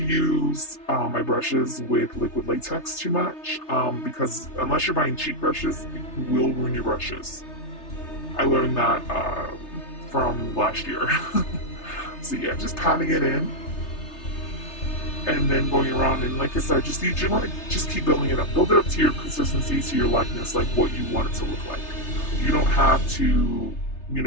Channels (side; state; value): right; late; 3.3 ms